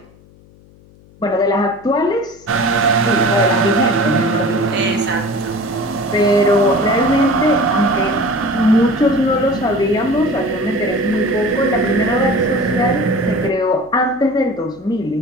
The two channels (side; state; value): left; noise; hum, 27 dB below the sound